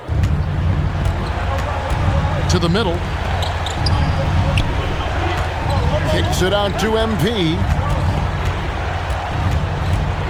To the middle. Kicks it out to MP.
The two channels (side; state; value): both; identical; correlation 1.00